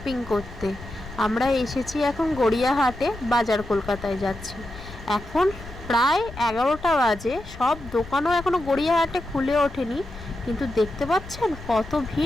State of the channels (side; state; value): left; noise; rumble, 15 dB below the sound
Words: করতে। আমরা এসেছি এখন গড়িয়াহাটে, বাজার কলকাতায় যাচ্ছি। এখন প্রায় 11টা বাজে, সব দোকানও এখনও গড়িয়াহাটে খুলে ওঠেনি, কিন্তু দেখতে পাচ্ছেন কত